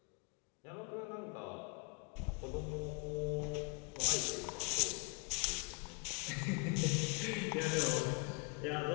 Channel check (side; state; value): right; quieter; 31.3 dB